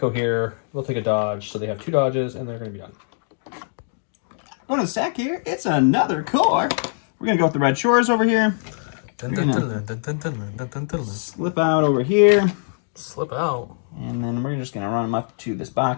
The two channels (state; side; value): silent; right; digital silence